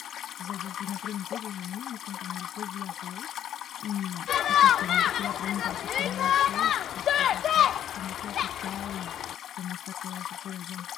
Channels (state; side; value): quieter; right; 10.5 dB